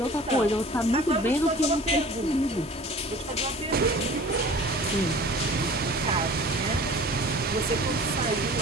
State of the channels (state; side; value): normal; both; correlation 0.44